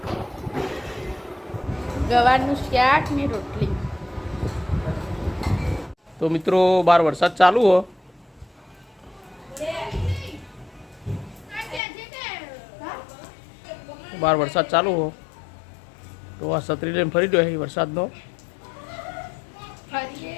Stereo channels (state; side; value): drops out; right; at 11.8 s